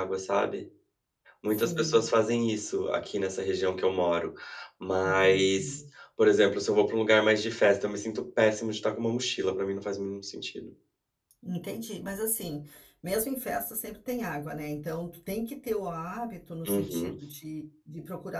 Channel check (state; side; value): identical; both; correlation 1.00